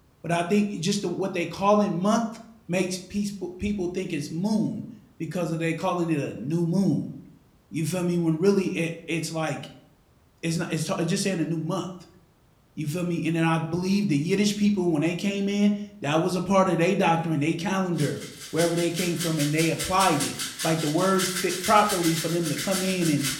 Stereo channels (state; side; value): identical; both; correlation 1.00